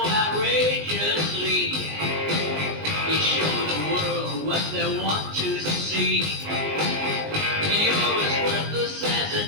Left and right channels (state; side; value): late; left; 19 ms